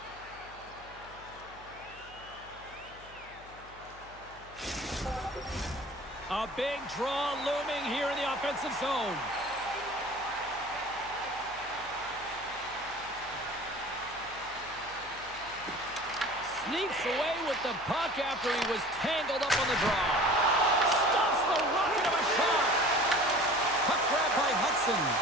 A big draw looming here in the offensive zone. Sneaks away with the puck after he was tangled up on the draw. Stops the rocket of a shot. Puck grab by Hudson.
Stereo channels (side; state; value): left; noise; hum, 21 dB below the sound